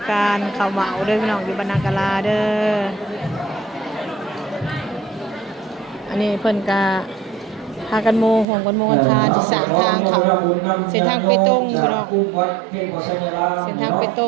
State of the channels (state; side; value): drops out; left; at 8.5 s